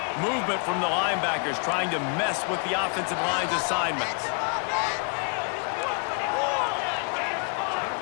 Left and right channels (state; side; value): quieter; right; 38.0 dB